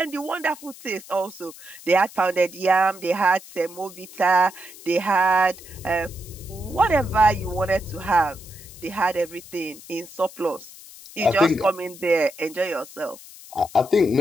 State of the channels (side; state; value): left; noise; hiss, 18 dB below the sound